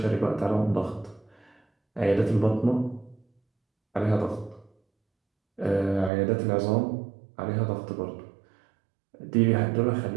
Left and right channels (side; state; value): left; drops out; at 6.1 s